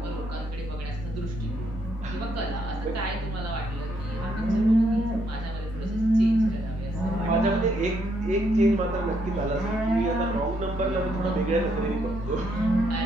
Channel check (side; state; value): both; normal; correlation 0.74